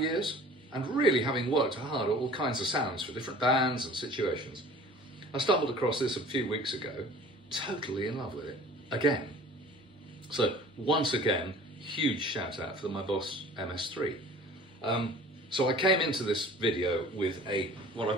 And really having worked hard at all kinds of sounds for different bands and situations, I stumbled across this a few weeks ago, totally in love with it, again. So once again, huge shout out for my Boss MS-3. So I came into this video with what I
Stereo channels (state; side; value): normal; both; correlation 0.46